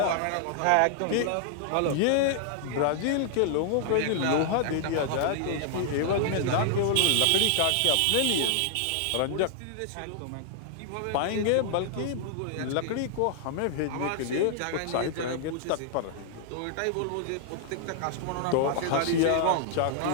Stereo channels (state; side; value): different; both; correlation -0.01